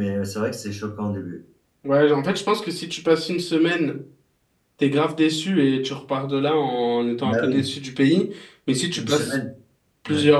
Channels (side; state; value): both; identical; correlation 1.00